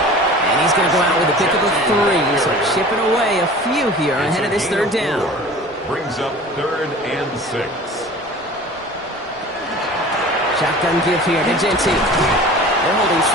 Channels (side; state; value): both; normal; correlation 0.41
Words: And he's going to go out with a pickup of 3. So chipping away a few here ahead of this 3rd down. Brings up 3rd and 6. Shotgun give here to Genty. They're holding